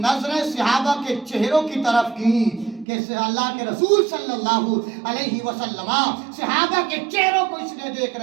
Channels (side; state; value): left; drops out; at 2.9 s